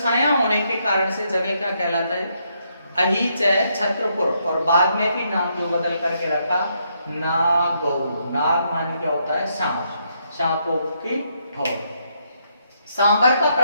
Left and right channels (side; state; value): both; inverted; correlation -0.76